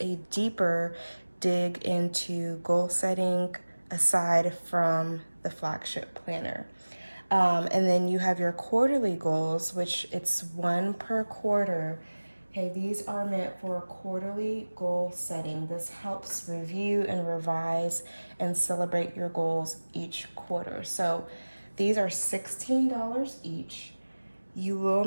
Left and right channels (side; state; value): both; inverted; correlation -1.00